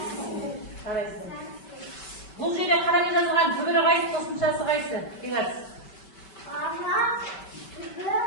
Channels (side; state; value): right; late; 5.2 ms